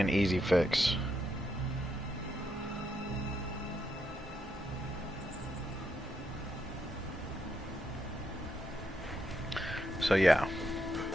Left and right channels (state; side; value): normal; both; correlation 0.80